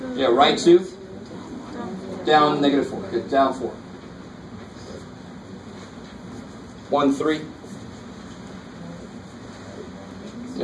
Yeah, right 2. Down -4. Good, down 4. 1, 3.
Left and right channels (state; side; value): identical; both; correlation 1.00